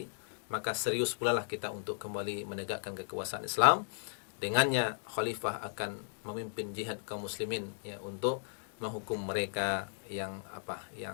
maka serius pula lah kita untuk kembali menegakkan kekuasaan Islam. Dengannya khalifah akan memimpin jihad kaum muslimin, ya, untuk menghukum mereka yang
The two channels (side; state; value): right; silent; digital silence